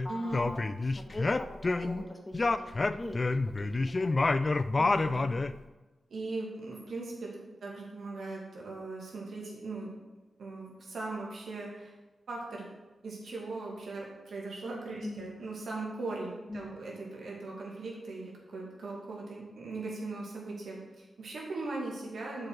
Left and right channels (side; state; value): both; normal; correlation 0.93